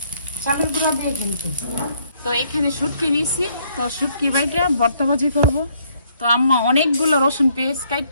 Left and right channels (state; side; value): inverted; both; correlation -0.68